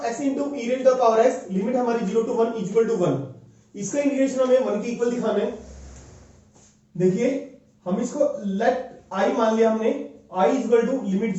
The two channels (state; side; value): identical; both; correlation 1.00